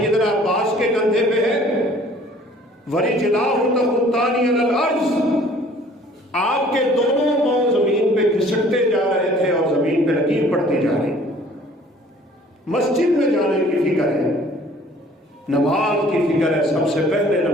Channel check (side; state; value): both; normal; correlation 0.54